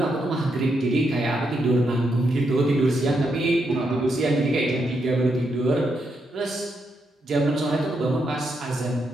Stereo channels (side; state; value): both; normal; correlation 0.81